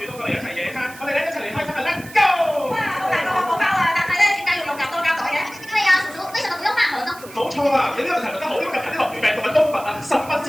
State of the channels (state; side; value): noise; right; hiss, 18 dB below the sound